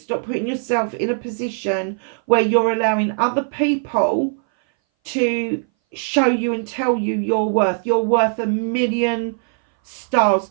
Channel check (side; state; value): left; silent; 60 dB below the other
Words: putting yourself in a position where you're allowing other people to show you and tell you your worth. You're worth a million stars,